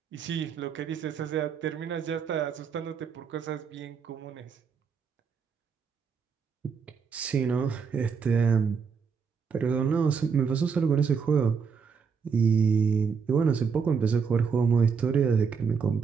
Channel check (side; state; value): left; quieter; 6.0 dB